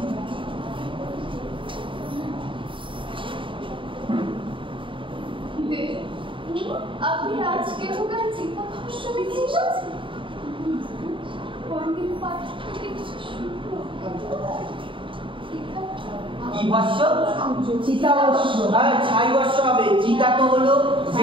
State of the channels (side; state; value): left; late; 0.25 ms